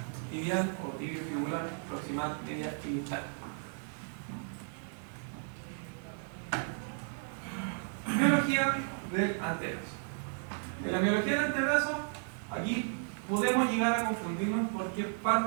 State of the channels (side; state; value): left; silent; 55 dB below the other